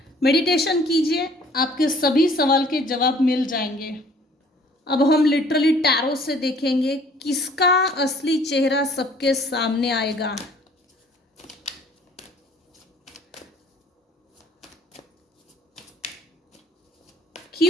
Meditation कीजिए, आपके सभी सवाल के जवाब मिल जाएंगे। अब हम लिटरली टैरो से देखेंगे किसका असली चेहरा सबके सामने आएगा।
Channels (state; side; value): normal; both; correlation 0.55